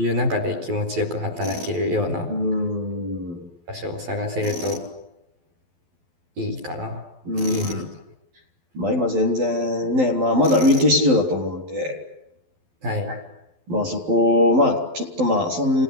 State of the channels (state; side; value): late; left; 12 ms